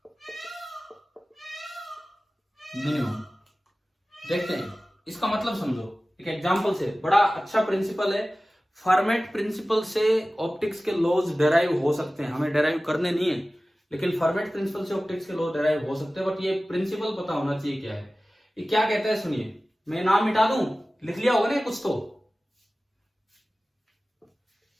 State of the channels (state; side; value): normal; both; correlation 0.97